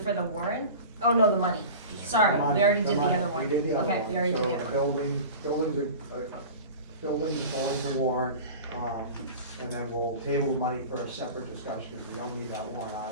the warrant? Oh, no, the money. Sorry, The money- we already did the money- other one. We did the other one. Okay, we already did the other one. So building's going to warrant, and then we'll table the money for a separate discussion, because we don't need that warrant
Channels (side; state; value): both; inverted; correlation -0.35